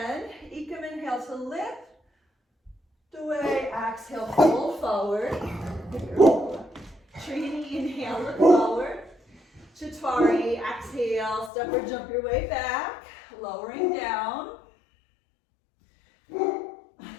Ekam, inhale to lift. Dway, exhale, fold forward. Trini, inhale, look forward. Chatwari, exhale, step or jump your way back, lowering down.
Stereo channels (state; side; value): drops out; right; at 11.5 s